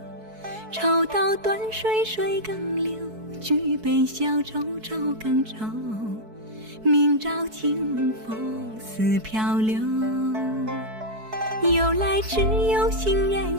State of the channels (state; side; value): late; left; 4.6 ms